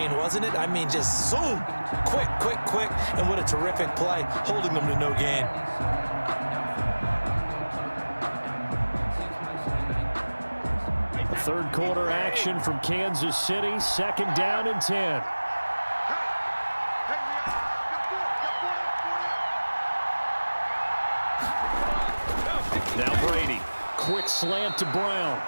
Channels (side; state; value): both; inverted; correlation -1.00